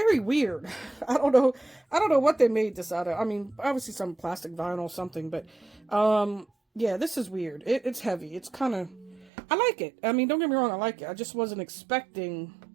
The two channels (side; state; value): left; drops out; at 9.3 s